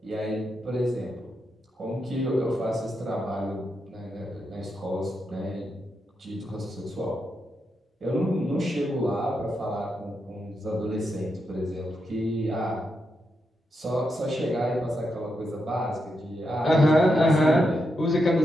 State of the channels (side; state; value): both; normal; correlation 0.84